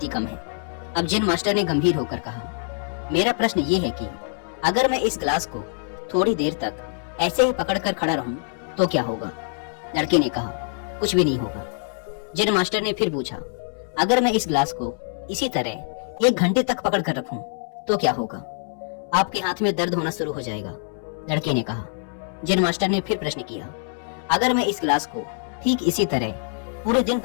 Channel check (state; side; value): silent; right; 62 dB below the other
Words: ही कम है। अब जैन मास्टर ने गंभीर होकर कहा, मेरा प्रश्न ये है कि अगर मैं इस गिलास को थोड़ी देर तक ऐसे ही पकड़कर खड़ा रहूं तो क्या होगा? लड़के ने कहा, कुछ भी नहीं होगा। जैन मास्टर ने फिर पूछा, अगर मैं इस गिलास को इसी तरह 1 घंटे तक पकड़ कर रखूं तो क्या होगा? आपके हाथ में दर्द होना शुरू हो जाएगा। लड़के ने कहा। जैन मास्टर ने फिर प्रश्न किया, अगर मैं इस गिलास को ठीक इसी तरह पूरे दिन